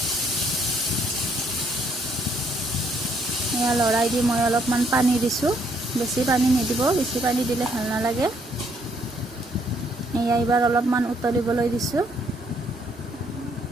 এয়া লৰাই দি মই অলপমান পানী দিছোঁ। বেছি পানী নিদিব, বেছি পানী দিলে ভাল নালাগে। এয়া এইবাৰ অলপমান উতলিবলৈ দিছোঁ।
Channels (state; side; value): normal; both; correlation 0.69